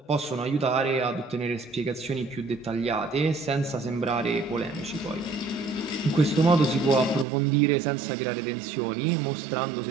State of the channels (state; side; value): drops out; left; at 7.2 s